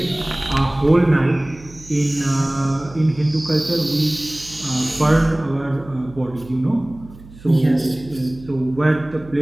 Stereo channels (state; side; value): noise; right; hum, 20 dB below the sound